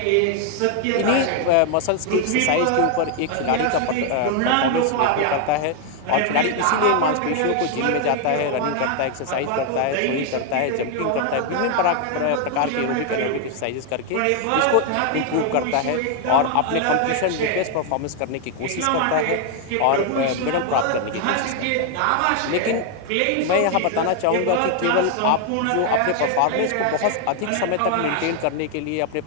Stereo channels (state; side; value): different; both; correlation 0.00